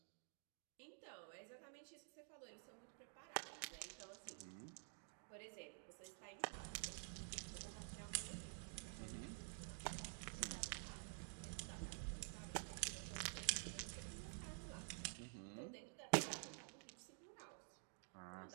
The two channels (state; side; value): silent; left; digital silence